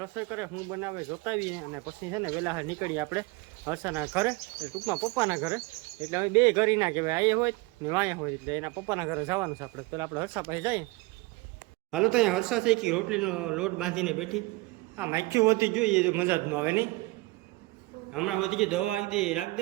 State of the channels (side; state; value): left; quieter; 23.1 dB